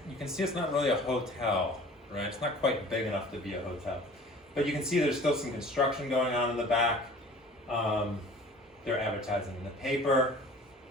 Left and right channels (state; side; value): normal; both; correlation 0.46